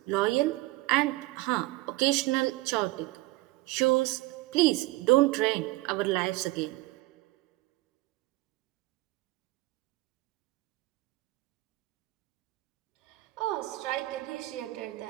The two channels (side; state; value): left; quieter; 20.2 dB